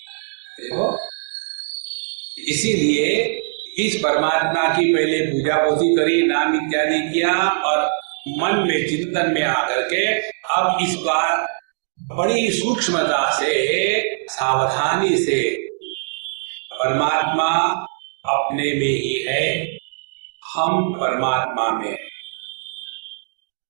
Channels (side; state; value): left; silent; digital silence